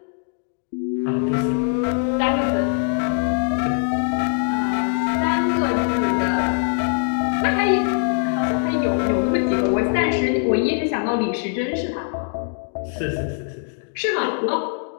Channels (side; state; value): right; silent; digital silence